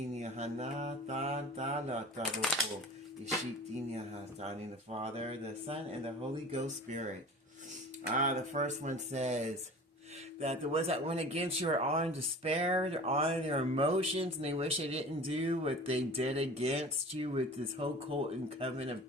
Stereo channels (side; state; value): both; normal; correlation 0.39